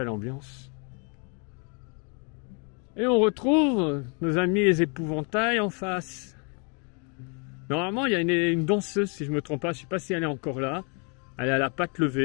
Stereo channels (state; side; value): quieter; right; 36.7 dB